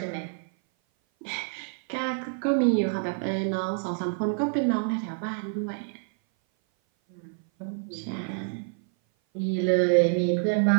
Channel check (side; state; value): left; silent; 57 dB below the other